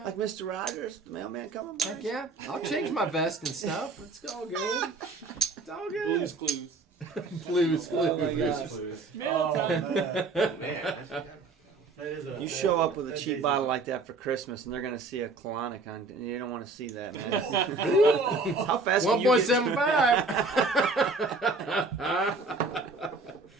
Like Mr. Rogers, the mailman coming by? Heck yeah. I'll change my vest and stuff. It's all good. It's all good. Blues Clues. Blues Oh my Clues. God. Please. Mail Oh, time. man. Man, I forgot. That is a, You show up with a that cheap is bottle like that for Christmas, and they're going to see a colonic on, and you don't want to see that, man. Oh. How fast can you get- 1.75.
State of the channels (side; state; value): left; quieter; 3.7 dB